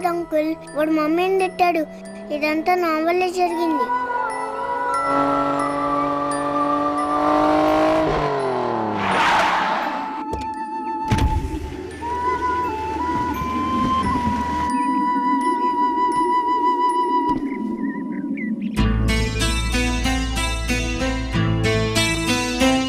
అంకుల్, వాడు మమ్మీని తిట్టాడు. ఇదంతా నా వల్లే జరిగింది.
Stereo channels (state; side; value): identical; both; correlation 1.00